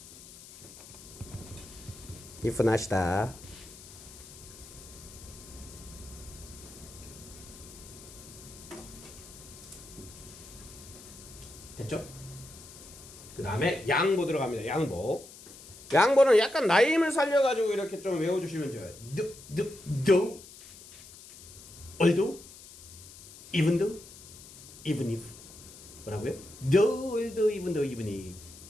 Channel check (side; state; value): left; noise; hiss, 18 dB below the sound